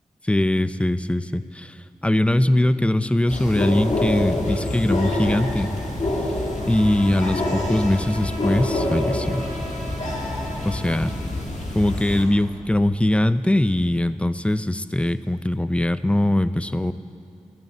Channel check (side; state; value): both; normal; correlation 0.94